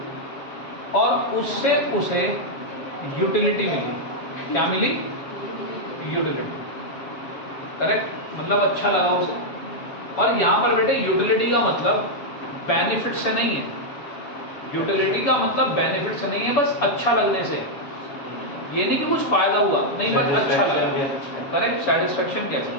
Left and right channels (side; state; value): right; late; 7.0 ms